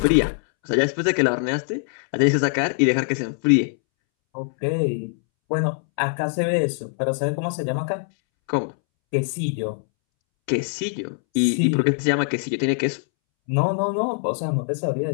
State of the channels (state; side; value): silent; right; 64 dB below the other